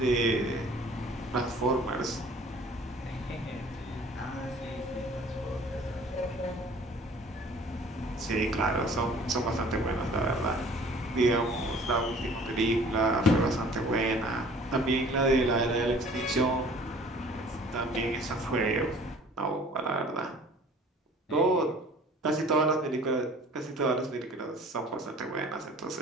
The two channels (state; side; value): normal; both; correlation 0.50